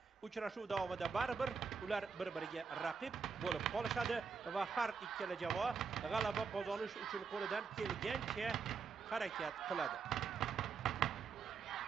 uchrashuv davomida baribir ular bir-biriga raqib bo'lib qolishadi va har ikkala jamoa g'alaba qozonish uchun qo'lidan kelgancha harakat qiladi.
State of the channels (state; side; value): quieter; left; 5.5 dB